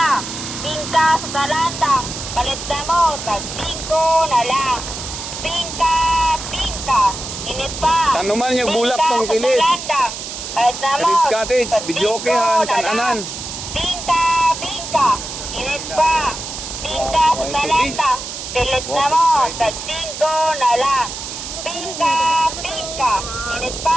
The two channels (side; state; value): right; noise; hiss, 8 dB below the sound